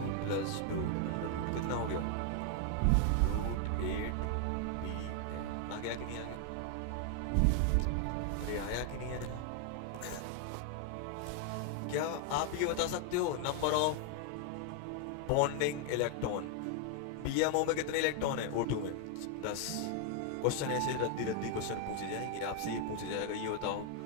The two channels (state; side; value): different; both; correlation 0.00